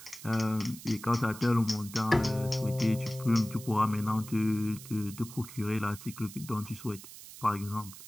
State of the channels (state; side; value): noise; right; hiss, 15 dB below the sound